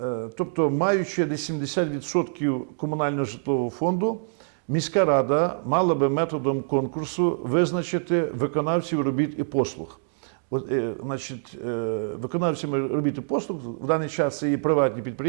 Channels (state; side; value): silent; left; digital silence